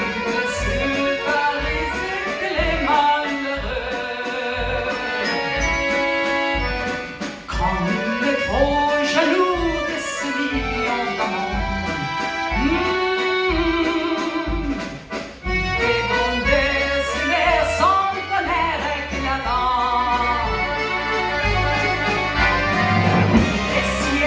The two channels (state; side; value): identical; both; correlation 1.00